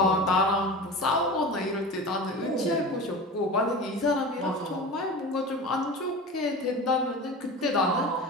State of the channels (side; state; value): both; normal; correlation 0.32